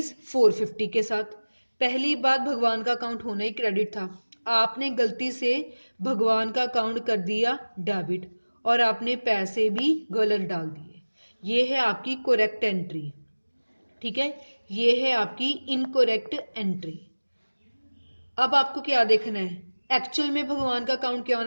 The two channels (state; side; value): inverted; both; correlation -1.00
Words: के साथ। पहली बात, भगवान का अकाउंट होना ही क्रेडिट था, आपने गलती से भगवान का अकाउंट कर दिया डेबिट, और आपने पैसे भी गलत डाल दिए। ये है आपकी करेक्ट एंट्री। ठीक है, ये है आपकी इनकरेक्ट एंट्री। अब आपको क्या देखना है, एक्चुअल में भगवान का अकाउंट क्या